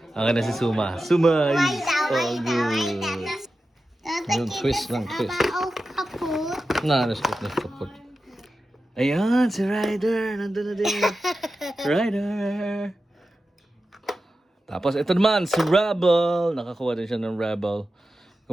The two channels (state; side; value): normal; both; correlation 0.92